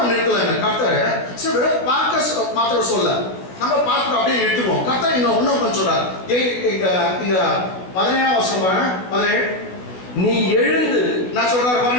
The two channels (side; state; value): right; late; 16 ms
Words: நிறுத்தலைங்க கர்த்தர். சரி, வெறும் பார்க்க மாத்திரம் சொல்ல, நம்ம பார்த்துட்டு அப்படியே நிறுத்துவோம். கர்த்தர் இன்னும் கொஞ்சம் சொல்றாரு. இங்க 17 வருஷம் பாருங்க, 17. நீ எழுந்து, நான் சொல்றாரு